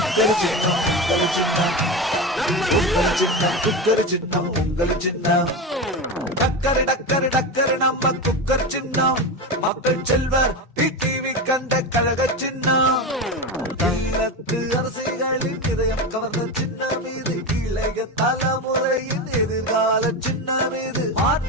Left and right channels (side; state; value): both; normal; correlation 0.20